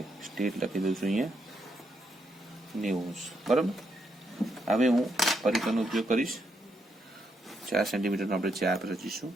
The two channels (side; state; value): both; normal; correlation 0.78